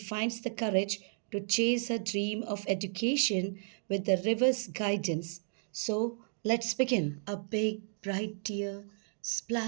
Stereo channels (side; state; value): left; silent; digital silence